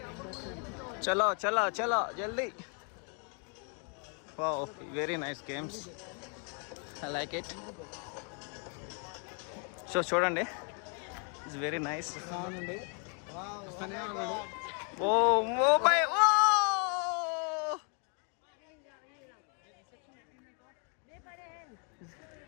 చలో చలో చలో జల్దీ. Wow, very nice games, I like it. So చూడండి, it's very nice. Oh bye, oh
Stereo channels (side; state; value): right; quieter; 39.5 dB